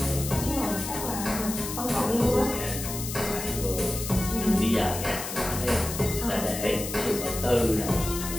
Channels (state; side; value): noise; left; hiss, 7 dB below the sound